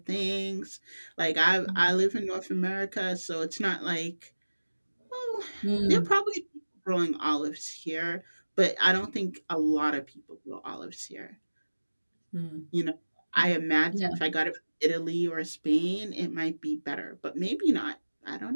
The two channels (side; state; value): both; inverted; correlation -1.00